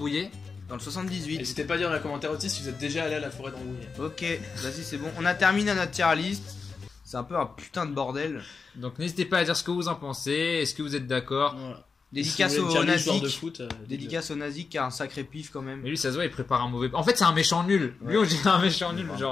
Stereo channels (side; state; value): right; quieter; 4.9 dB